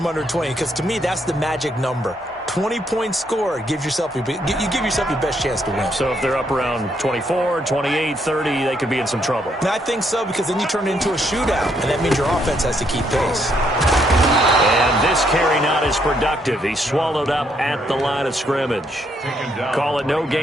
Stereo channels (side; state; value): both; normal; correlation 0.73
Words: under 20, because to me that's the magic number. 20 points scored gives yourself you give yourself your best chance to win. So if they're up around 24, 28, 30, they could be in some trouble. And I think so, because then you turn it into a shootout, and that means your offense has to keep pace. And this carry not as productive. He's swallowed up at the line of scrimmage. Call it no